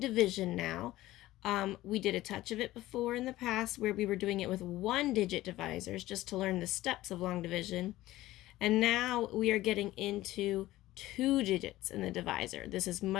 now. We did a touch of it before in the past where we were doing it with one-digit divisors just to learn the steps of long division. And now we are getting into two digits in the divisor. This is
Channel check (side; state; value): right; quieter; 16.3 dB